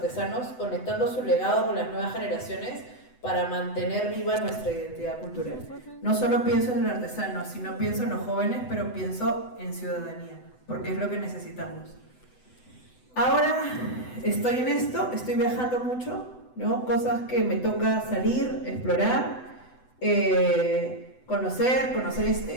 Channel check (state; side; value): late; right; 8.0 ms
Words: conectando su legado con las nuevas generaciones para mantener viva nuestra identidad cultural. No solo pienso en el artesano, sino pienso en los jóvenes, pero pienso en ciudadanía, porque es lo que necesitamos. Ahora estoy en esto, estoy viajando mucho, ¿no? Cosas que me toca salir, explorar, conocer